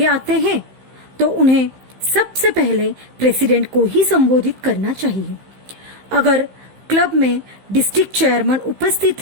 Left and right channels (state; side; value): late; left; 15 ms